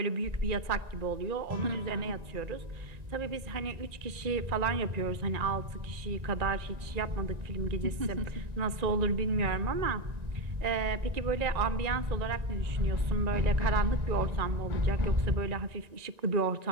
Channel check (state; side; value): late; left; 1.9 ms